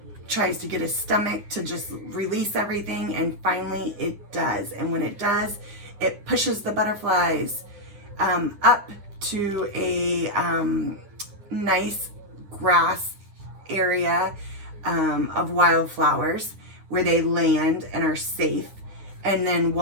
tries to get his stomach to just release everything, and finally it does. And when it does, it pushes the butterflies up to a nice grass area of wildflowers where they land and are safe. And then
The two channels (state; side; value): late; left; 9.9 ms